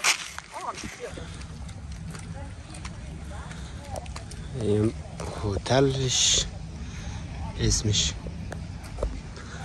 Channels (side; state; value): both; identical; correlation 1.00